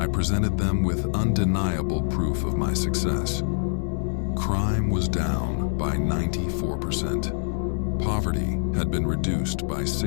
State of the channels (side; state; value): right; silent; digital silence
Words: presented them with undeniable proof of my success. Crime was down by 94%. Poverty had been reduced by